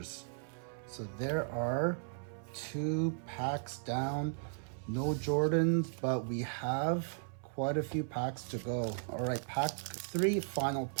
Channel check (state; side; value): silent; left; 54 dB below the other